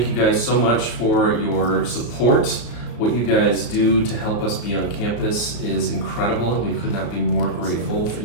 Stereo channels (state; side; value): late; right; 34 ms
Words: you guys so much for your support. What you guys do to help us be on campus is incredible, and we could not be more grateful for